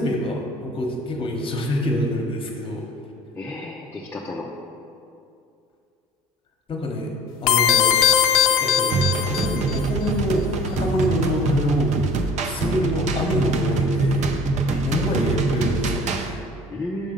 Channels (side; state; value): both; normal; correlation 0.43